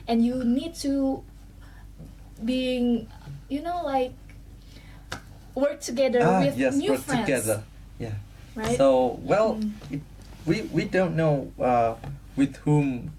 and you need to being, like work together with Yes, new work friends, together. Yeah. right? So well, we don't know with whom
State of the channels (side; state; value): both; identical; correlation 1.00